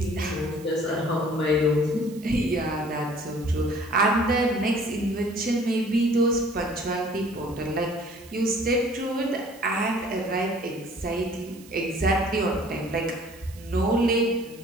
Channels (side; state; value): right; noise; hiss, 22 dB below the sound